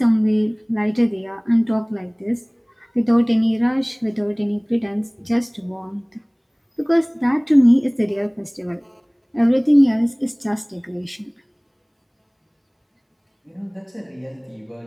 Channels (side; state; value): both; identical; correlation 1.00